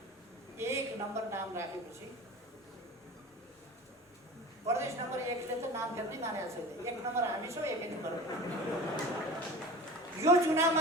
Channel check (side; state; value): both; normal; correlation 0.37